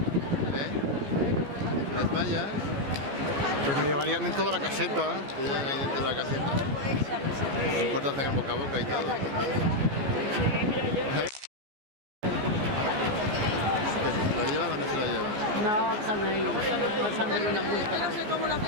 ¿Eh? Las mallas. Pues me llevarían dentro de la caseta. Te llevan ahí dentro de la caseta. No importa hacer el boca a boca y todo. ¿Lo llevan o no se lo llevan? No, también. Pásame una multa. No sé cómo la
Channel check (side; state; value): left; late; 14 ms